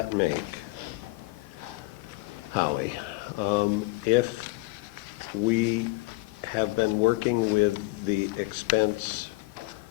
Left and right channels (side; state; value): right; quieter; 22.5 dB